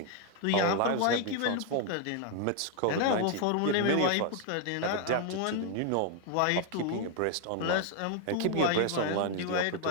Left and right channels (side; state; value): both; different; correlation 0.00